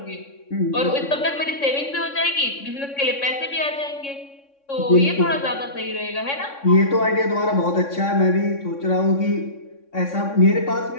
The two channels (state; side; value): late; right; 3.6 ms